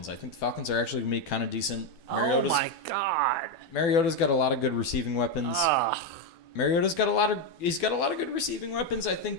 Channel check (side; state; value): right; late; 12 ms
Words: I think the Falcons are actually gonna be kind of decent. Oh my God. Mariota's got a lot of good receiving weapons. Mariota's got a lot of good receiving weapons. I